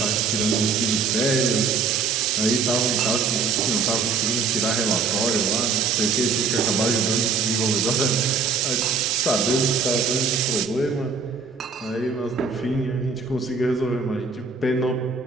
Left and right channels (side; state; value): left; quieter; 5.2 dB